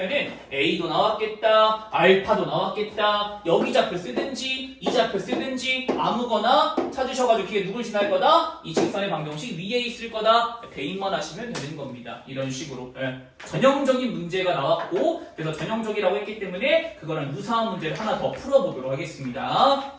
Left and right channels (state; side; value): identical; both; correlation 1.00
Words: A도 나왔겠다, 알파도 나왔겠다, 여기 좌표 쓰든지 이 좌표 쓰든지 아무거나 찾으셔가지고 그게 누굴 지날 거다? 이 직선의 방정식 위에 있을 거다. 대입만 하시면 되는 겁니다. 이런 식으로. 네. 전형적인 문제가 나왔고 그래서 전형적이라고 했기 때문에 그거랑 유사한 문제를 하나 더 풀어보도록